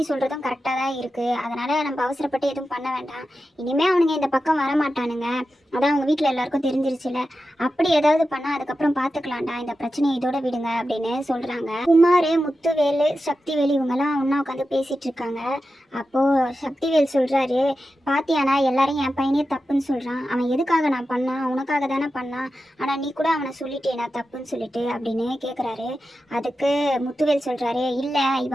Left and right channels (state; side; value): normal; both; correlation 0.91